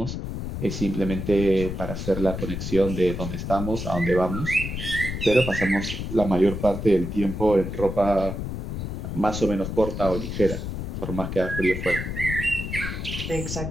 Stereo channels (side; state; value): left; noise; rumble, 5 dB below the sound